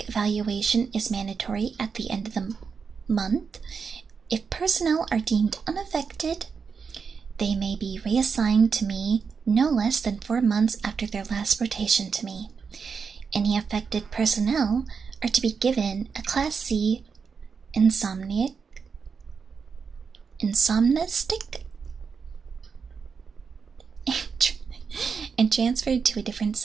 evaluation is mandatory at the end of the month. If personnel are deemed unaffected, they may be reassigned to me no less than 4 months after their last rotation to me. Any affected personnel are to be given a Class C insomnistic and transferred to a different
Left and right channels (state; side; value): quieter; left; 5.7 dB